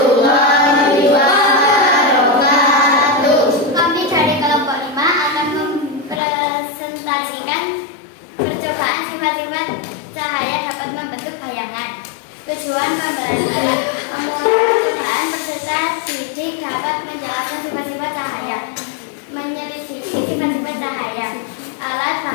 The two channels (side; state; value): right; drops out; at 6.2 s